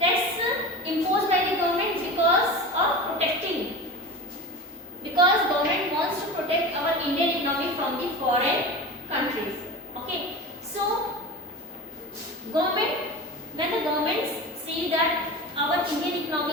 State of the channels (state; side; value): normal; both; correlation 0.30